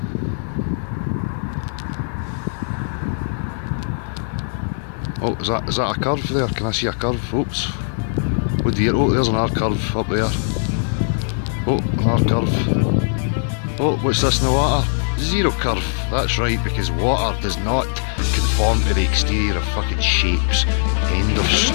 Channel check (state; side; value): silent; right; digital silence